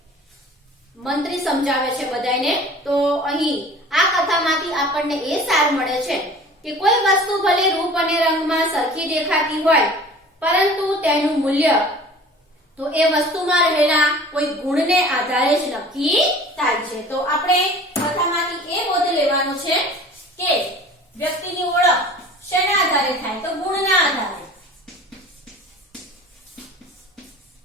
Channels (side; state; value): both; normal; correlation 0.44